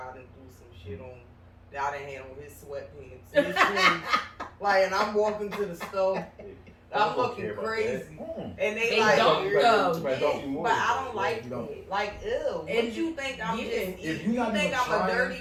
I done do some shit on. I done had on his sweatpants, his shoes, like, and I'm walking to the store. I'm looking crazy, and They like, don't "You're- though. yeah, but I don't like You don't. it. Like, ew. And What you think I'm yeah. just? If You you're not think even I'm a trying-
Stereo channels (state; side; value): identical; both; correlation 1.00